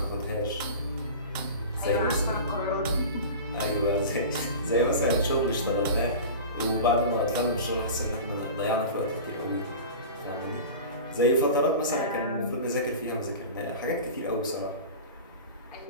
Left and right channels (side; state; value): both; inverted; correlation -0.33